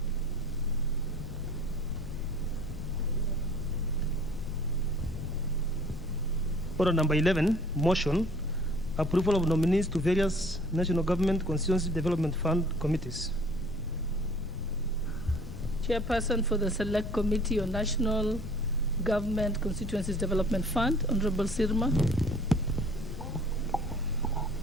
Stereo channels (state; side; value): noise; left; rumble, 10 dB below the sound